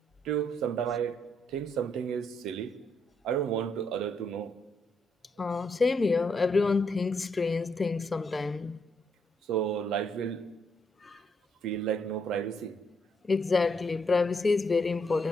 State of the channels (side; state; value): both; normal; correlation 0.75